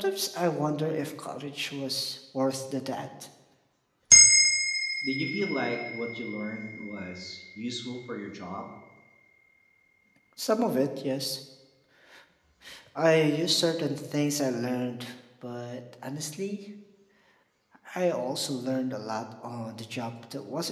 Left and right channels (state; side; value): identical; both; correlation 1.00